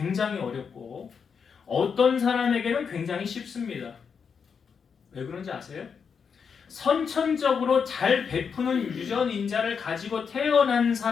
어렵고 어떤 사람에게는 굉장히 쉽습니다. 왜 그런지 아세요? 선천적으로 잘 베푸는 유전인자를 가지고 태어난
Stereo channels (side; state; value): right; quieter; 6.3 dB